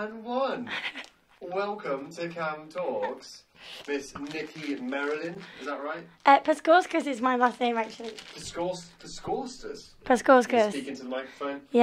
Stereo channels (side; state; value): both; identical; correlation 1.00